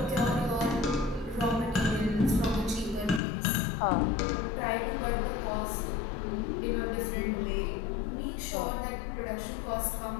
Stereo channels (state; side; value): drops out; right; at 3.2 s